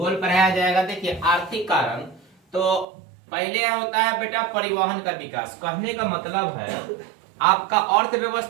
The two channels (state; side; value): drops out; left; at 2.9 s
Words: पढ़ाया जाएगा। देखिए आर्थिक कारण तो पहले होता है बेटा परिवहन का विकास। कहने का मतलब है आपका